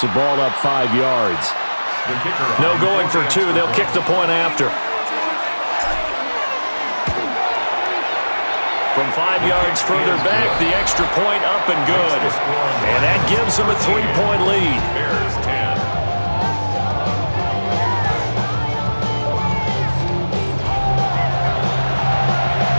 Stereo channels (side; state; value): both; inverted; correlation -1.00